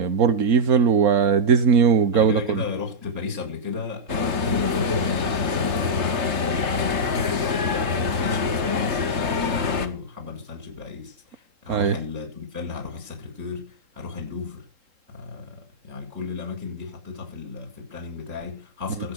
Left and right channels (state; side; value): late; left; 3.7 ms